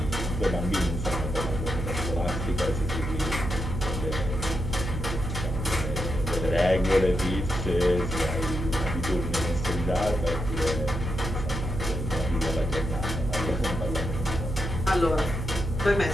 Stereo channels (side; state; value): right; noise; hum, 4 dB below the sound